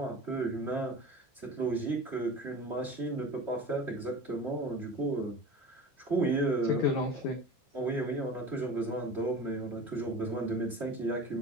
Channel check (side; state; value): both; normal; correlation 0.36